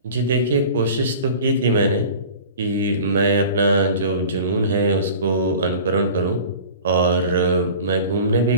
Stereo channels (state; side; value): inverted; both; correlation -0.40